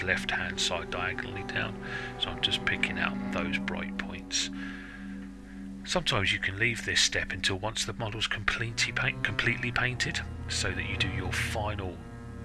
left hand side diagonally down. So I'm just picking out those bright points. Sometimes you can leave this step until once the model's completely painted, so that you do your final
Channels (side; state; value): both; identical; correlation 1.00